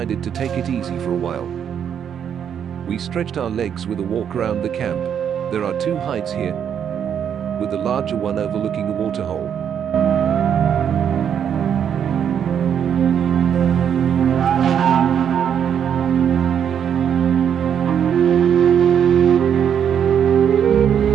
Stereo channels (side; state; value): left; quieter; 8.4 dB